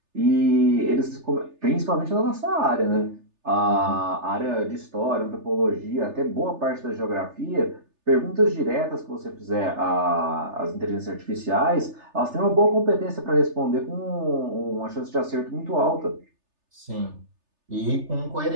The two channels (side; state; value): left; late; 3.3 ms